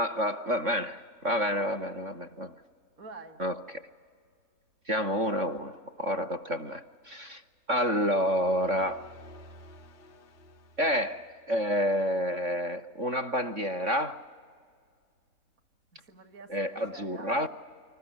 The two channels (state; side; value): late; left; 3.6 ms